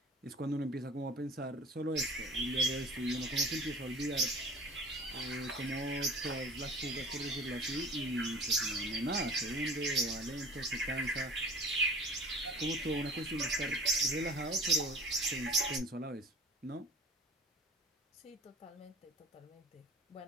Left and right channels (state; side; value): normal; both; correlation 0.43